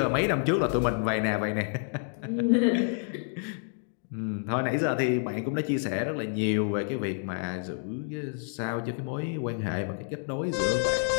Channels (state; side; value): silent; right; 59 dB below the other